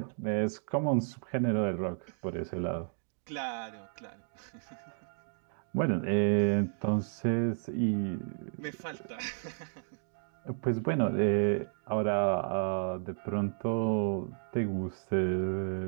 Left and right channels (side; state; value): left; silent; digital silence